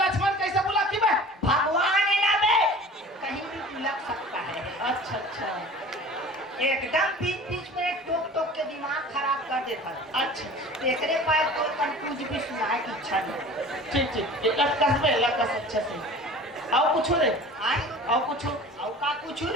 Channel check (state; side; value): normal; both; correlation 0.42